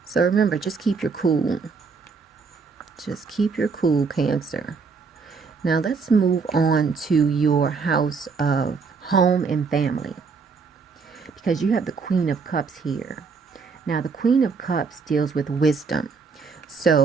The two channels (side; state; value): left; quieter; 5.0 dB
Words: So remember, just keep your cool. Just keep your cool, Cancer. Now let's move on to your house of home and family, because you have the Queen of Cups here. Now the Queen of Cups deals with wisdom.